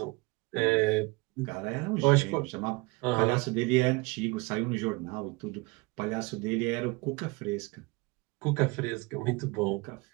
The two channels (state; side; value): quieter; left; 25.2 dB